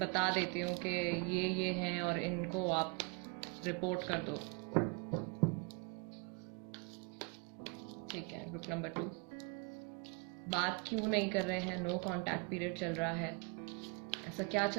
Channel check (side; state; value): left; quieter; 31.0 dB